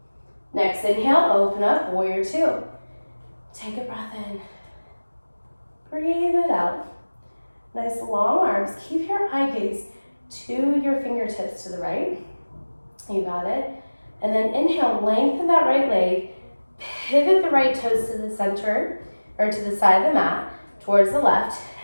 Next inhale, open up, warrior two. Take a breath in. Breathe it out. Nice long arms. Keep your eye gaze to your fingertips to the right. You got it. And then inhale, lengthen that right leg. Pivot the right toes to the center, or to the side of the mat, towards the left.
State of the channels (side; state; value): both; inverted; correlation -1.00